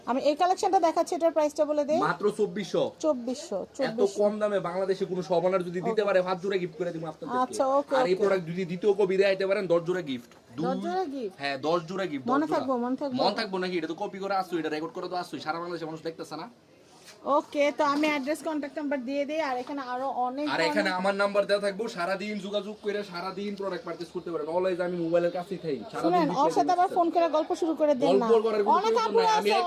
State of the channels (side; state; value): both; identical; correlation 1.00